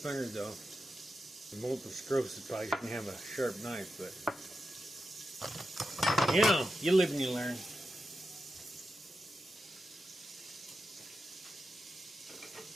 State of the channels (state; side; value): normal; both; correlation 0.89